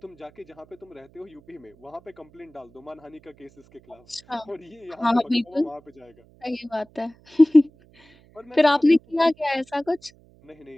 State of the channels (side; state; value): right; noise; hum, 28 dB below the sound